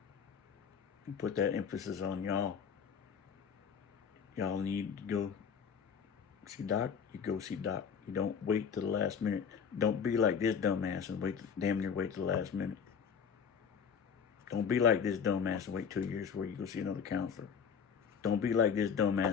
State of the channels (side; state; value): right; quieter; 6.9 dB